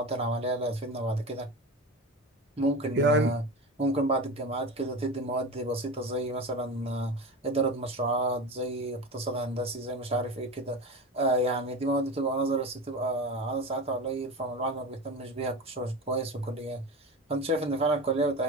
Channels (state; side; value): normal; both; correlation 0.27